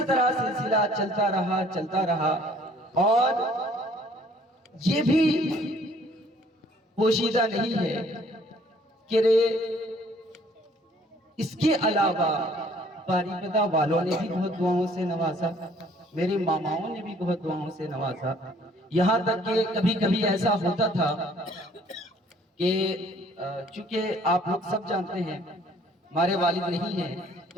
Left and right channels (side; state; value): both; normal; correlation 0.59